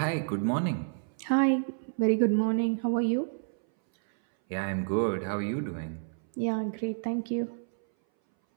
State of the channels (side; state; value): left; silent; 58 dB below the other